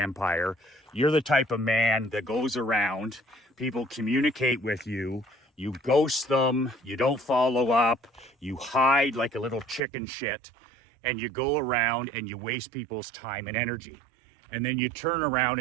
you're the type of man that goes around, people communicate with you, you ghost them, you don't follow up, you hide like a little chicken shit, and you go around and you waste people's time and energy. And then you turn around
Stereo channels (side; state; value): left; drops out; at 9.8 s